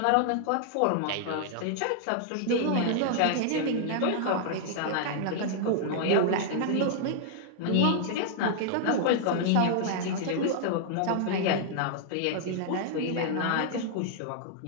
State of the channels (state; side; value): different; both; correlation -0.01